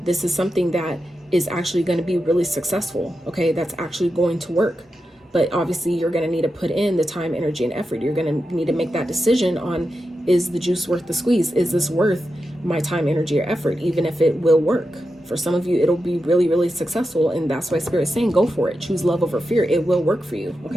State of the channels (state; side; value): normal; both; correlation 0.89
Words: this is something that is actually going to be really successful, okay? That's actually going to work. But obviously you're going to need to put in the time, energy, and effort. You're going to need to make that decision on, is the juice worth the squeeze? Is this worth my time, energy, or effort, even if it will work. For some of you, it'll be really, really successful. And that's why Spirit is saying, go for it. Choose love over fear. It will work for you.